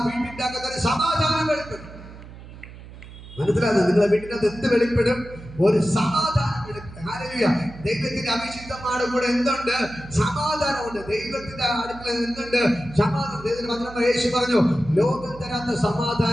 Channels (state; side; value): noise; right; hum, 16 dB below the sound